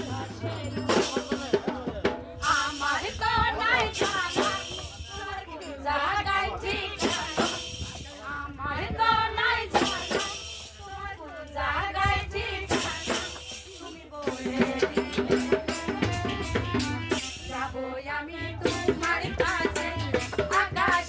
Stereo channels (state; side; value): identical; both; correlation 1.00